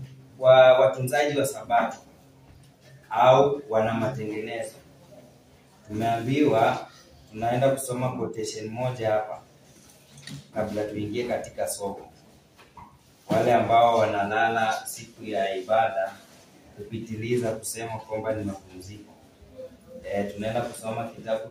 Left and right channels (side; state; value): both; identical; correlation 1.00